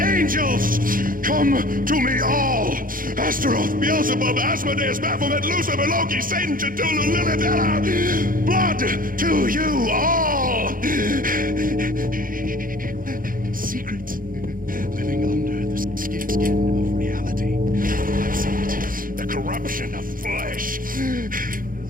Come to me all! Astaroth, Beelzebub, Asmodeus, Baphomet, Lucifer, Loki, Satan, Cthulhu, Lilith, Ella! Blood to you all! Secret, living under the skin of reality. I've seen it, the corruption of flesh.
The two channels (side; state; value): left; late; 0.40 ms